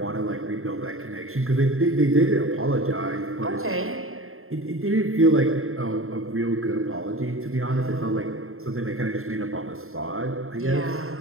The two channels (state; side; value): late; left; 0.61 ms